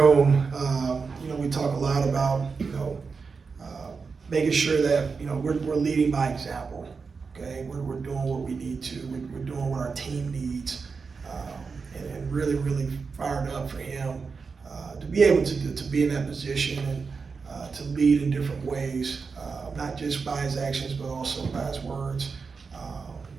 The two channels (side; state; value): left; quieter; 5.0 dB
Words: we talk a lot about making sure that we're leading by example. Okay, we're doing what we need to. We're doing what our team needs, and really fired up for him to be able to be in that position and to lead in different ways, not just by his actions but also by his words.